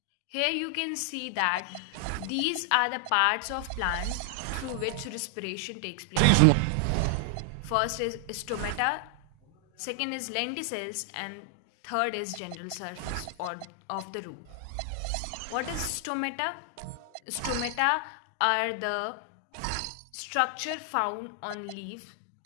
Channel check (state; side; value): different; both; correlation 0.00